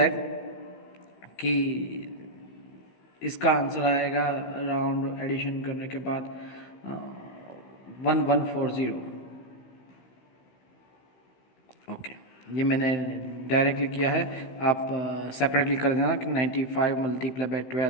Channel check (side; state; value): right; late; 16 ms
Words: कि इसका आंसर आएगा अराउंड एडिशन करने के बाद 1140। ओके, ये मैंने डायरेक्टली किया है, आप सेपरेटली कर देना कि 95 मल्टीप्लाई बाय